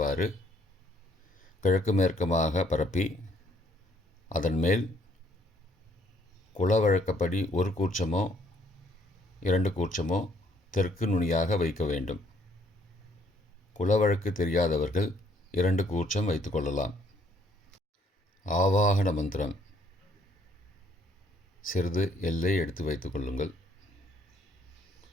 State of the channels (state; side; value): normal; both; correlation 0.65